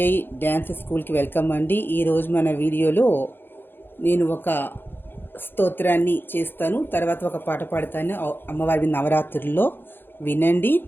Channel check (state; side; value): late; right; 0.10 ms